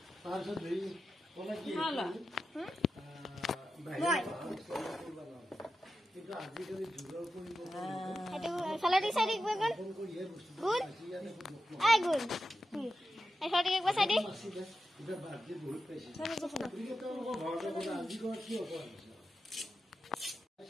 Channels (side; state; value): both; normal; correlation 0.90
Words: তাৰপিছত ধৰি কলা কি হালা কিন্তু আজিকালি যুগৰ পৰিৱৰ্তন সেইটো চালাডি চাইডি গগন গুড আই গুড এই ছটি একবাৰ সাইডি এটা বাজে বহুত পাইছে কিন্তু তেওঁলোকৰ ঘৰতে গ'লে আজি ঘৰ কি হ'ব